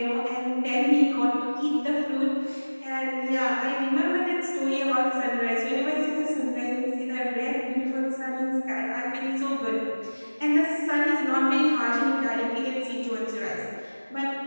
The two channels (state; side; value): inverted; both; correlation -1.00